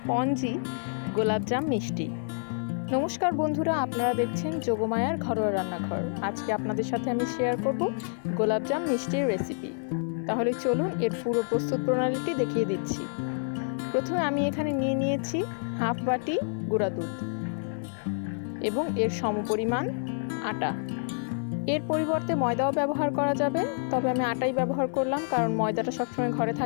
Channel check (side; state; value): right; silent; digital silence